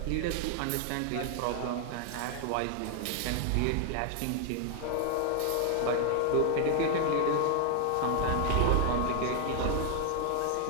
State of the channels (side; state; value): both; different; correlation 0.00